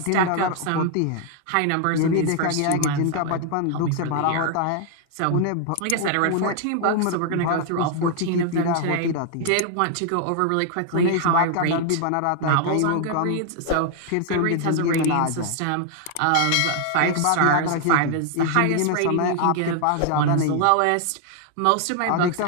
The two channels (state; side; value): different; both; correlation 0.00